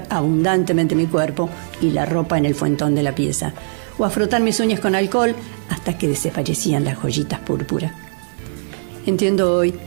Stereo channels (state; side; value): silent; left; digital silence